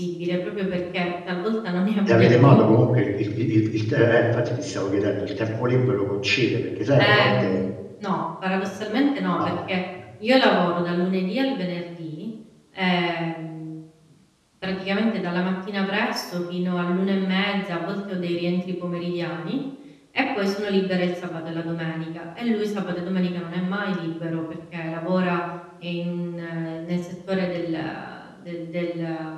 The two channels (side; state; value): both; identical; correlation 1.00